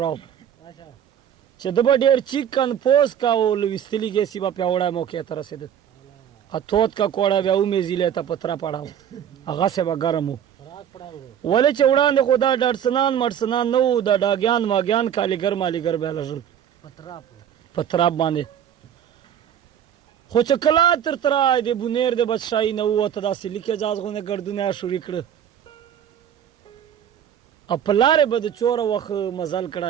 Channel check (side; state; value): left; quieter; 9.3 dB